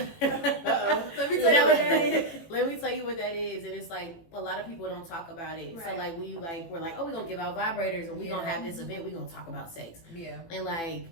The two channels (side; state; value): right; late; 18 ms